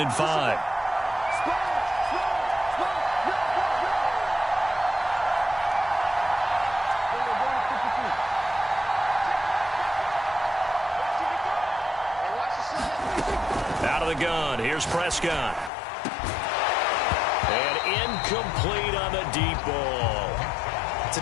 5. Out of the gun. Here's Prescott. And incomplete on the deep ball. It's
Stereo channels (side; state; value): right; drops out; at 15.7 s